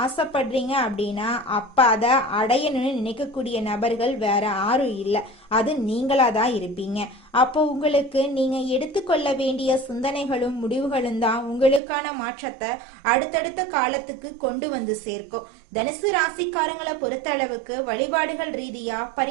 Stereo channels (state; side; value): drops out; left; at 11.8 s